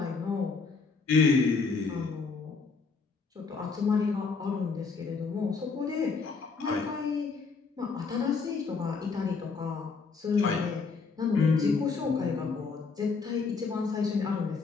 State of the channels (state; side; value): quieter; right; 4.7 dB